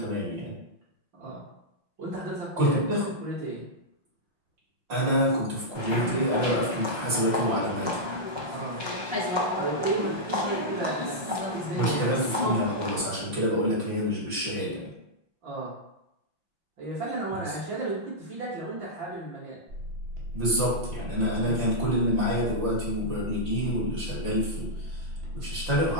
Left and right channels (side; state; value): left; late; 5.7 ms